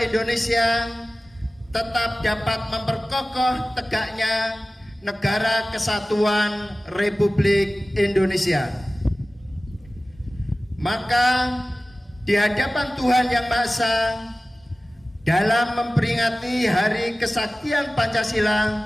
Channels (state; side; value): normal; both; correlation 0.97